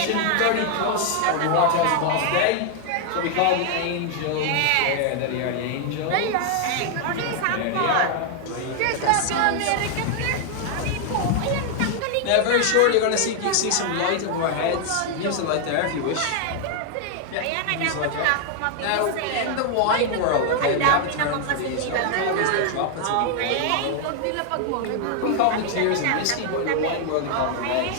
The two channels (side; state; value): both; different; correlation 0.00